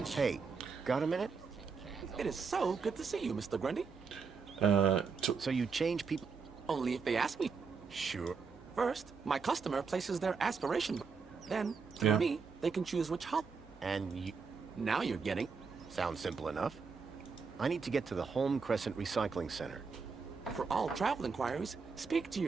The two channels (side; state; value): left; quieter; 5.2 dB